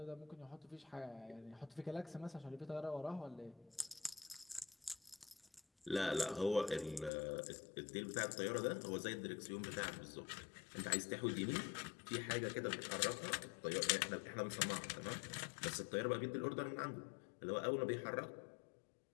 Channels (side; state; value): right; drops out; at 7.1 s